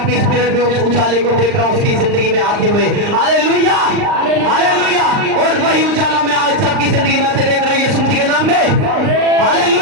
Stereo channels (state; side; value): late; left; 39 ms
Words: स्पिरिट में उस उजाले को देख रहा हूं उसकी जिंदगी में आते हुए। Hallelujah, hallelujah. और वही उजाला मैं आज सबकी जिंदगी में आते देख रहा हूं यीशु मसीह के नाम में।